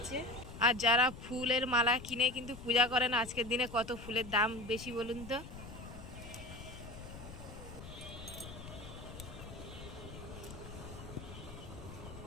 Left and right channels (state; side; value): noise; left; rumble, 12 dB below the sound